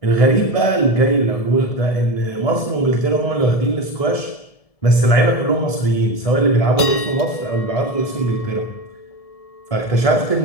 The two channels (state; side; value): late; right; 1.7 ms